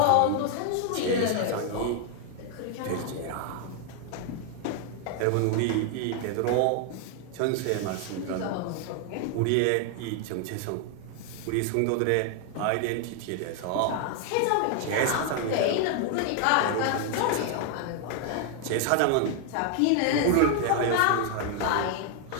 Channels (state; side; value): different; both; correlation 0.00